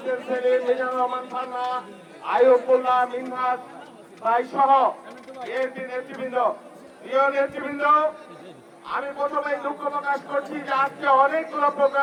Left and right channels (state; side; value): identical; both; correlation 1.00